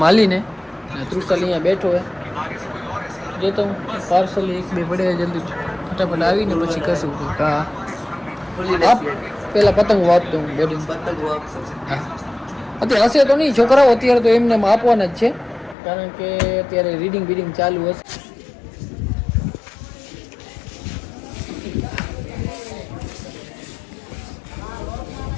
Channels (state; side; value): drops out; right; at 15.8 s